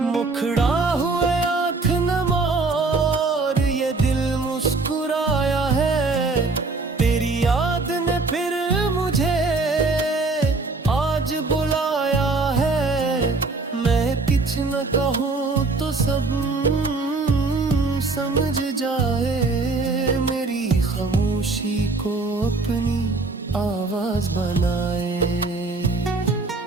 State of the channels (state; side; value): quieter; left; 3.7 dB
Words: मुखड़ा हुए आँख नम और ये दिल मुस्कुराया है, तेरी याद ने फिर मुझे आज बुलाया है। मैं कुछ न कहूँ तो सब समझ जाए, मेरी खामोशी को अपनी आवाज बना